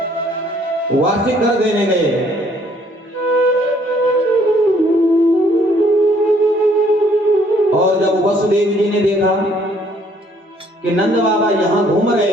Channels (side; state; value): both; normal; correlation 0.63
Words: वार्षिक कर देने गए। और जब वसुदेव जी ने देखा कि नंद बाबा यहां घूम रहे